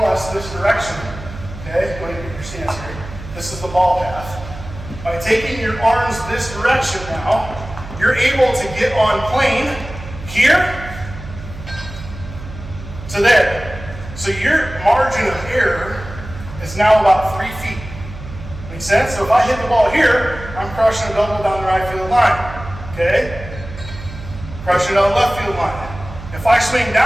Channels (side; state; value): right; noise; hum, 12 dB below the sound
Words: this direction, okay, go ahead and get your stance here. This is the ball path. By taking your arms this direction now, you're able to get on plane here to there. So your margin of error is now about 3 feet. Make sense? So if I hit the ball here, I'm crushing a double down the right field line. Okay? Crushing it on the left field line. If I swing